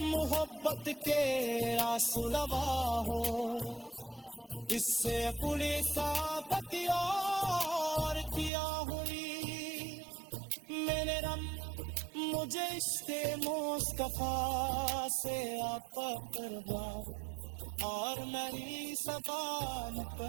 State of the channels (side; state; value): left; drops out; at 8.5 s